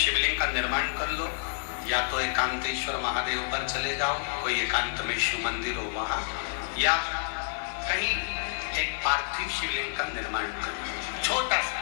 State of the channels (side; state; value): right; silent; 59 dB below the other